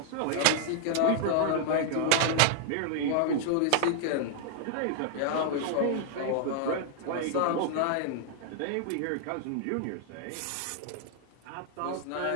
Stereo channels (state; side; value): different; both; correlation -0.01